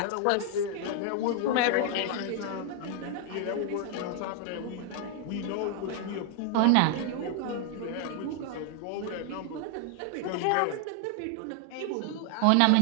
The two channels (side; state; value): both; different; correlation 0.00